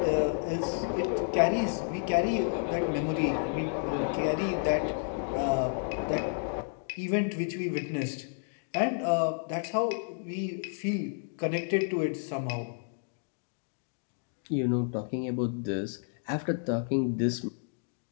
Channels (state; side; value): silent; right; digital silence